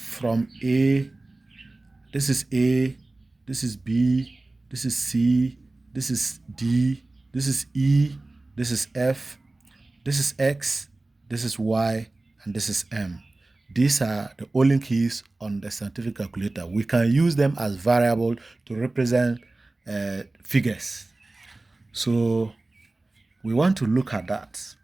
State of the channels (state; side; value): quieter; left; 3.0 dB